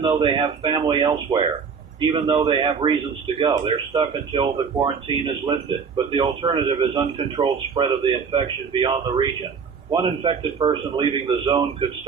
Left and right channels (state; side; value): quieter; left; 6.0 dB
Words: though they have family elsewhere, even though they have reasons to go. They're stuck until the quarantine is lifted. But the alternative is uncontrolled spread of the infection beyond the region. One infected person leaving the zone could